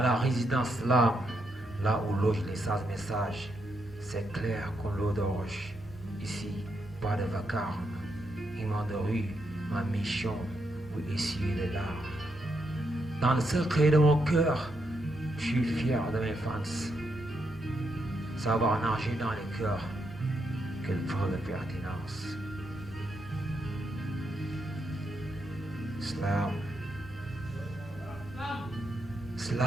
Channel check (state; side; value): normal; both; correlation 0.80